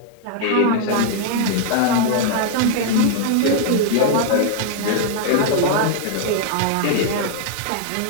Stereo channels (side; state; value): both; different; correlation 0.00